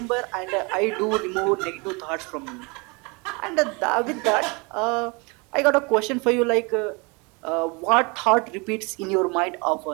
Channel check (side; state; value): left; quieter; 29.5 dB